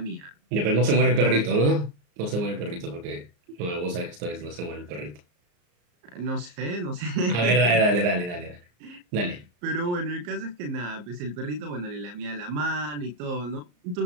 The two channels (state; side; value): late; left; 34 ms